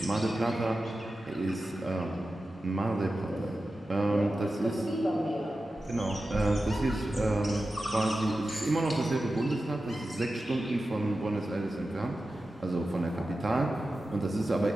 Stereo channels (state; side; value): normal; both; correlation 0.93